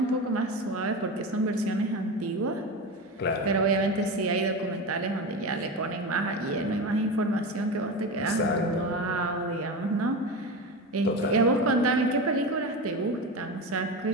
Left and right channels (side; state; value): both; normal; correlation 0.23